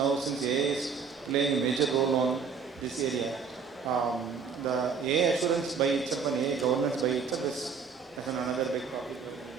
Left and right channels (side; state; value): left; quieter; 5.8 dB